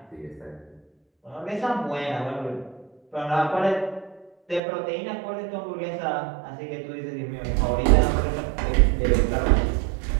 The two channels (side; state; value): left; drops out; at 4.6 s